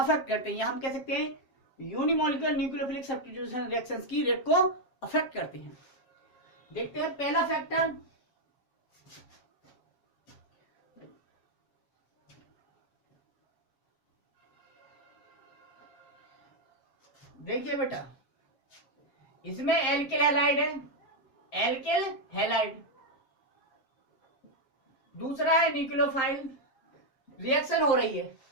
करते हैं, या हम कह सकते हैं यूनिमोलिकुलर न्यूक्लियोफिलिक सब्स्टिट्यूशन रिएक्शंस की रेट को अफेक्ट करते हैं। देखते हैं पहला फैक्टर, देखिए बेटा इसमें एल्किल हैलाइड है, एल्किल हैलाइड। दूसरा है न्यूक्लियोफाइल, रिएक्शन हो रही है,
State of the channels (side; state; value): right; late; 7.3 ms